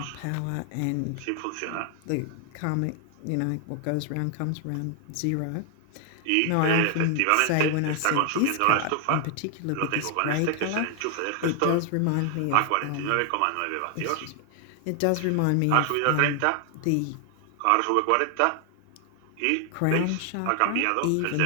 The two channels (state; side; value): different; both; correlation 0.00